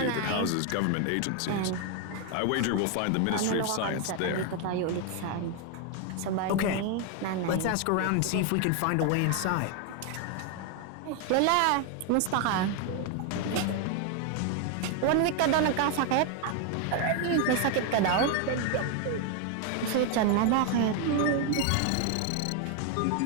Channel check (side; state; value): both; different; correlation 0.01